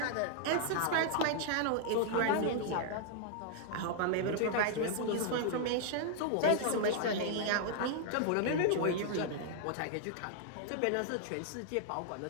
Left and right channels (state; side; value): different; both; correlation -0.01